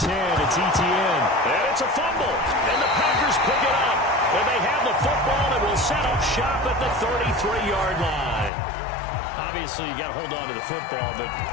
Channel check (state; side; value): drops out; right; at 8.5 s